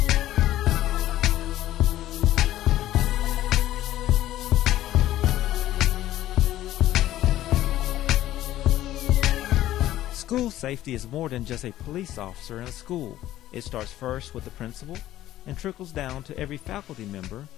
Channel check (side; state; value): right; quieter; 13.9 dB